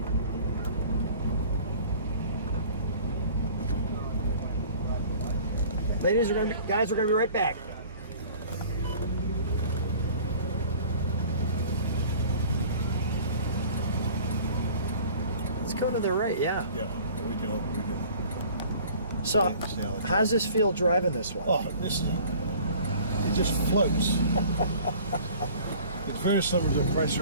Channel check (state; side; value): inverted; both; correlation -0.47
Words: Guys, we're gonna be right back. Let's go to the right, yeah. Yeah, we can. So, how does this feel driving this one? Oh, it just floats. It's very similar to the